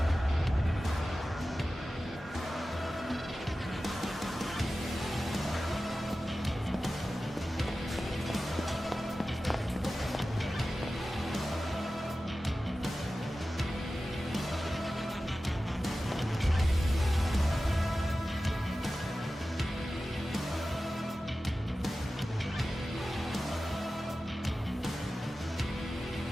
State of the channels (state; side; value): normal; both; correlation 0.94